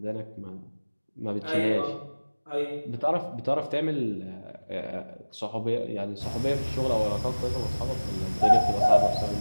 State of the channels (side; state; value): both; inverted; correlation -1.00